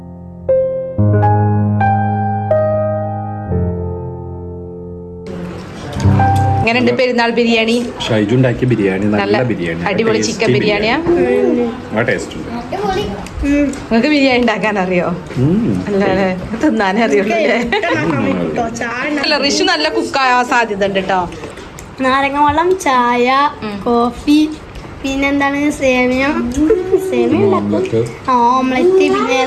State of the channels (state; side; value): identical; both; correlation 1.00